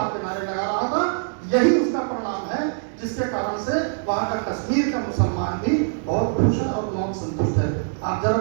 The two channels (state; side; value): silent; left; digital silence